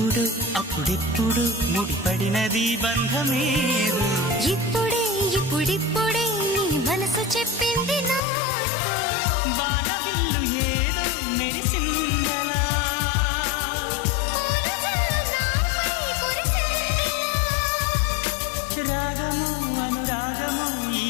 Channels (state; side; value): drops out; right; at 8.2 s